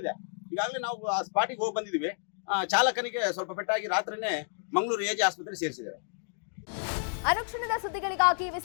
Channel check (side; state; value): right; silent; digital silence